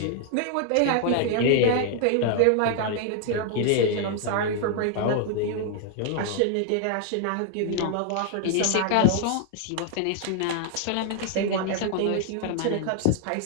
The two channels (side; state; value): both; different; correlation 0.00